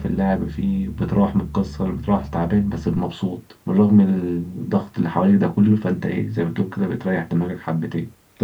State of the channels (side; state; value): both; identical; correlation 1.00